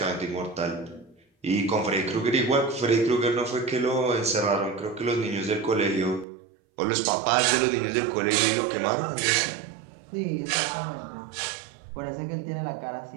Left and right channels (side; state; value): left; drops out; at 6.2 s